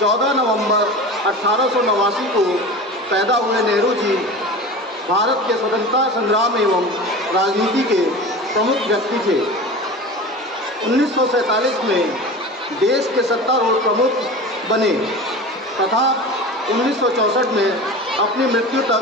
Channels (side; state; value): both; normal; correlation 0.33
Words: नवंबर 1889 को पैदा हुए नेहरू जी भारत के स्वतंत्रता संग्राम एवं राजनीति के प्रमुख व्यक्ति थे। 1947 में देश के सत्तारूढ़ प्रमुख बने तथा 1964 में अपनी मृत्यु